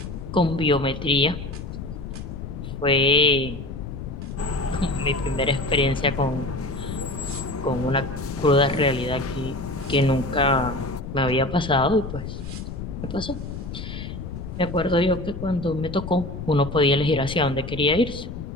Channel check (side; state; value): left; noise; rumble, 8 dB below the sound